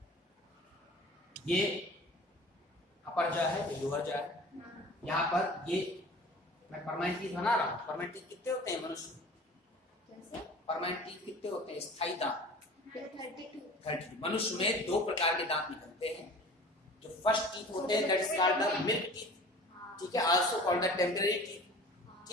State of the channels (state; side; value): normal; both; correlation 0.42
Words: ये अपर जा है, ये लोअर जा है। यहाँ पर ये मैं परमानेंट टीथ बना रहा हूँ। परमानेंट टीथ कितने होते हैं मनुष्य में? कैसे? परमानेंट टीथ कितने होते हैं? स्थायी दांत 32। 30। मनुष्य में 2 प्रकार के दांत निकलते हैं। जो फर्स्ट टीथ होते हैं that is called the milk teeth, ठीक है, also called the temporary teeth,